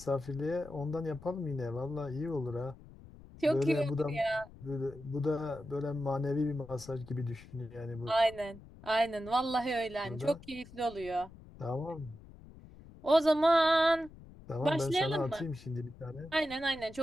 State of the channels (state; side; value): noise; left; rumble, 19 dB below the sound